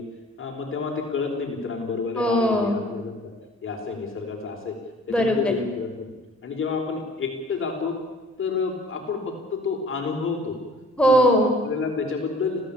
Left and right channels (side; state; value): both; normal; correlation 0.50